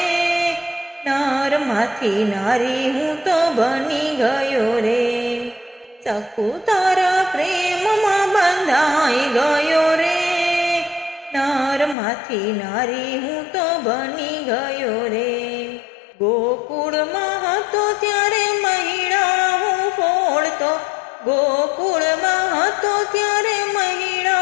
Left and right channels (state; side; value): drops out; right; at 12.0 s